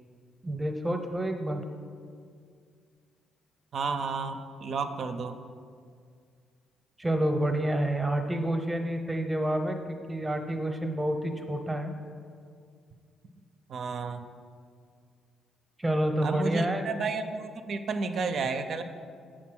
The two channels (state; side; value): normal; both; correlation 0.86